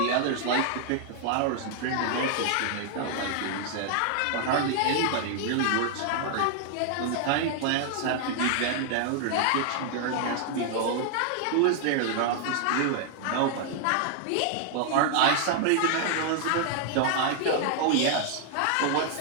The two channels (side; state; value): both; different; correlation 0.00